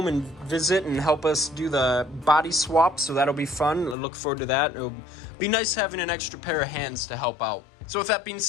and visit and help us do the body swap, so that'll be fun. I look forward to that. It'll be nice having an extra pair of hands to help out. So with that being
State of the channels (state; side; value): drops out; right; at 4.0 s